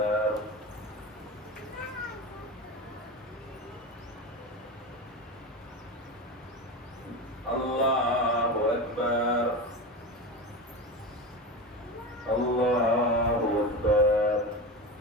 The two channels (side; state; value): both; normal; correlation 0.24